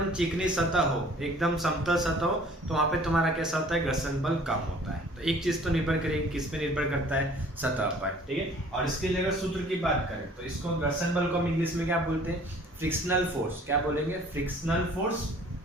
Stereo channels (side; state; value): both; normal; correlation 0.52